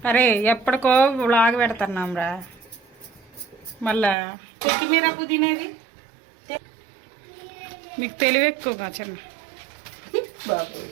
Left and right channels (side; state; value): left; drops out; at 4.2 s